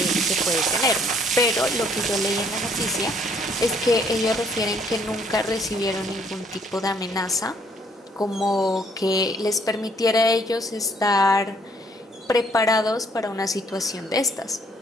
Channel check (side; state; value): both; normal; correlation 0.65